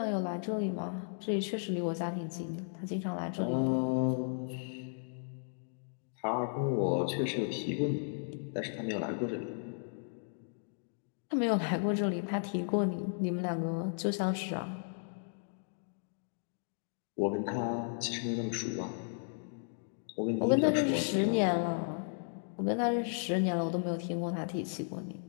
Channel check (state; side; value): silent; right; digital silence